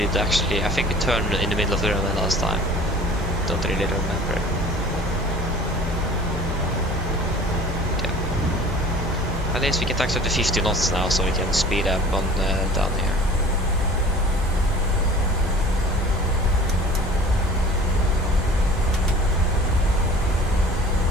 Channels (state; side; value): normal; both; correlation 0.45